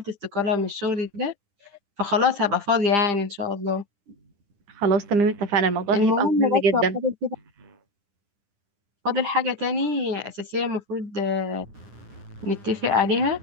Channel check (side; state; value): left; late; 9.9 ms